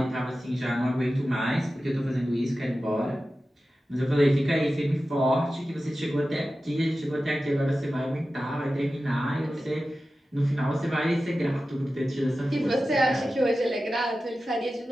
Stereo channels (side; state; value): both; normal; correlation 0.94